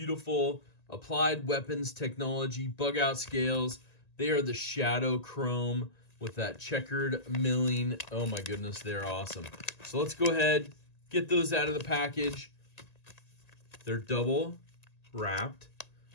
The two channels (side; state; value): right; late; 1.9 ms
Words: Applied Weapons Technology bug out scales. They are the shadow chrome with that checkered milling. Oh my goodness, they're awesome. So let's go ahead, get those out of the package. They're double wrapped.